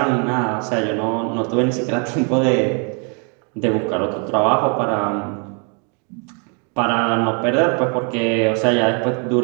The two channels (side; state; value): left; quieter; 37.3 dB